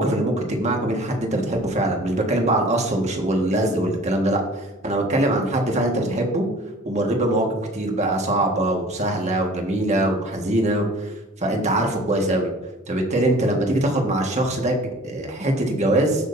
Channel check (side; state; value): both; normal; correlation 0.47